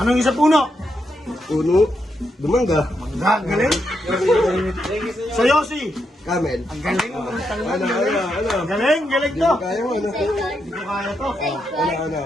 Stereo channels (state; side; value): normal; both; correlation 0.82